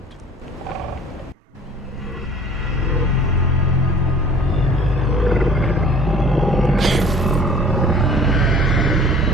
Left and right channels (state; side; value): normal; both; correlation 0.49